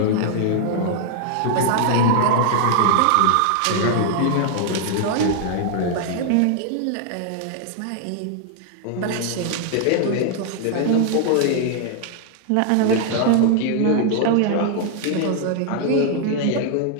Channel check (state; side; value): different; both; correlation 0.00